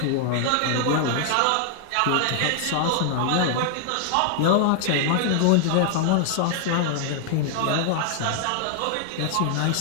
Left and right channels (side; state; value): both; different; correlation 0.00